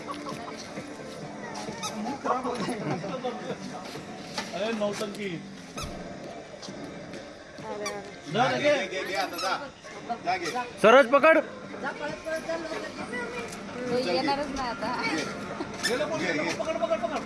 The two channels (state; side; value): identical; both; correlation 1.00